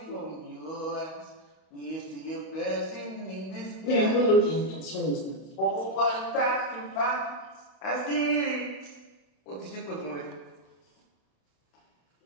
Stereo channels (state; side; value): late; right; 32 ms